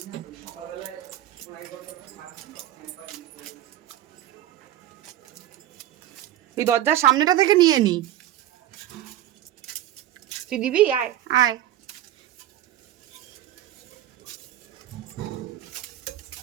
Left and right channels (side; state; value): left; quieter; 12.7 dB